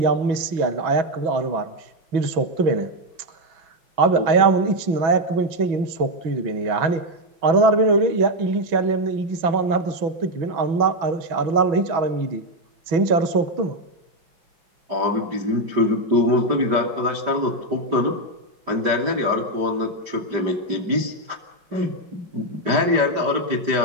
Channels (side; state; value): left; late; 6.1 ms